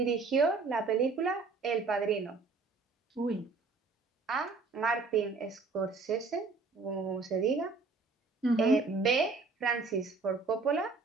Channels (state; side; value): quieter; left; 4.1 dB